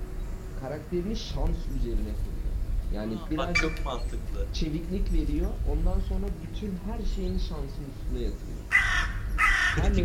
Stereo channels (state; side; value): identical; both; correlation 1.00